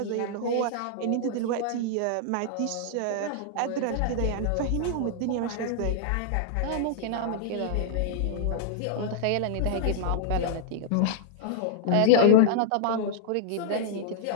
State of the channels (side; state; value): both; different; correlation -0.01